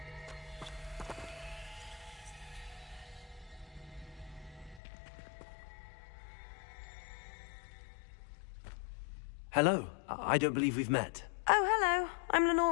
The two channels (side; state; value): right; drops out; at 4.8 s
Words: Hello. I don't believe we've met. Oh, hello. I'm